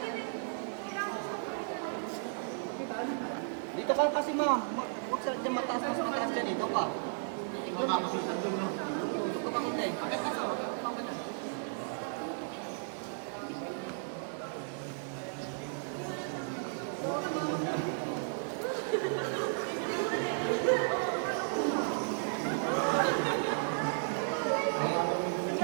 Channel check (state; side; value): silent; left; digital silence